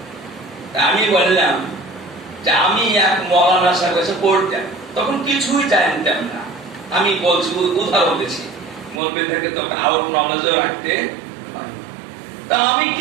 আমি বললাম যে আমি এক মৌলানা সাহেব কাছে পড়তাম, তখন কিছুই জানতাম না, আমি বলছি উদাহরণ দিচ্ছি, মৌলবীদেরকে তো আউট নলেজও রাখতে, তা আমি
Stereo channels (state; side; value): drops out; left; at 9.0 s